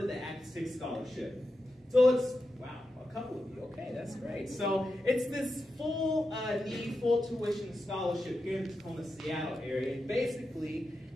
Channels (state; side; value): normal; both; correlation 0.89